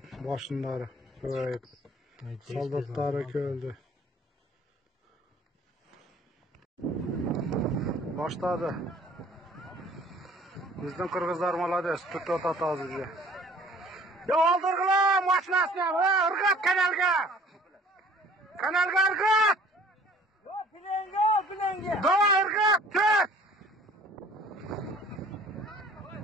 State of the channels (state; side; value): normal; both; correlation 0.52